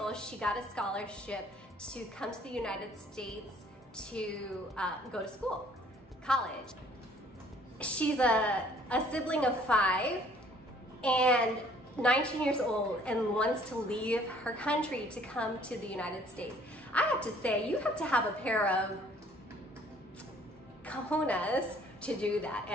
She got a scholarship to come to the United States to go to school, college. She's a sibling of 5 and 19 years old and wants to leave her country to come to the United States. I have to say, you have to have a pair of cojones to do that.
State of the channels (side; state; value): both; normal; correlation 0.58